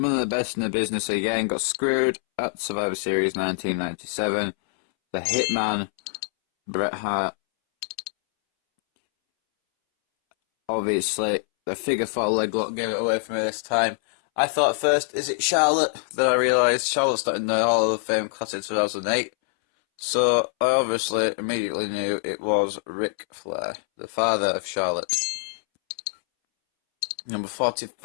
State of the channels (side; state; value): right; silent; 62 dB below the other